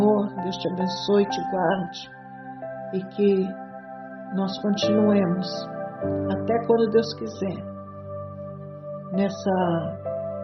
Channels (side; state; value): both; identical; correlation 1.00